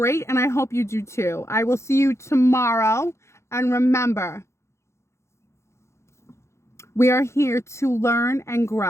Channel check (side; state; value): right; late; 0.13 ms